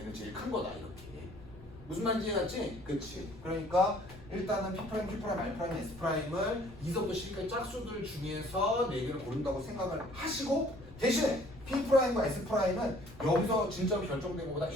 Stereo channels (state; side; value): noise; left; rumble, 19 dB below the sound